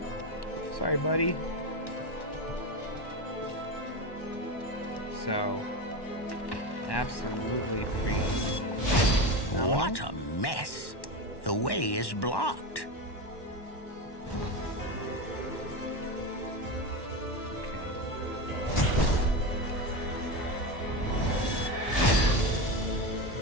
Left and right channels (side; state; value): right; late; 1.1 ms